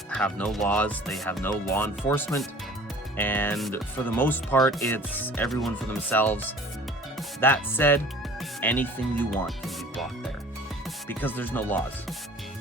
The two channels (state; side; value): normal; both; correlation 0.47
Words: have no laws, they have no law enforcement, and for the most part, it's everyone for themselves. That said, anything you want can be bought there, because there's no laws.